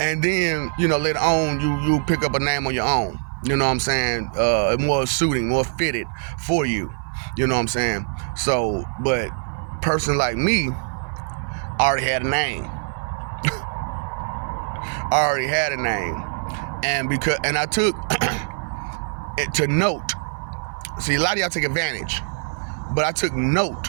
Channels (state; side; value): silent; left; 57 dB below the other